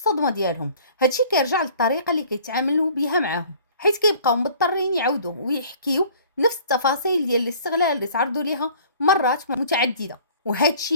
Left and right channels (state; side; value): inverted; both; correlation -0.51